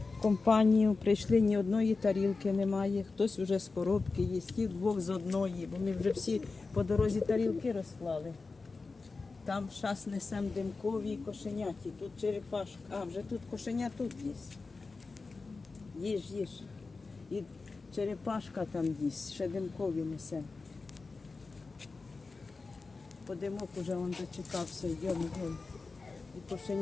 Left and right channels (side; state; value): right; quieter; 4.0 dB